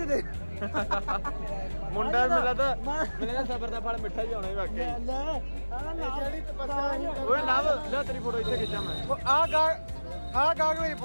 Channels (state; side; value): inverted; both; correlation -1.00